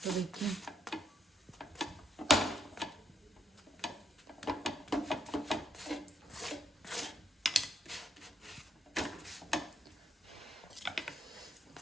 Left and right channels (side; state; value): both; normal; correlation 0.76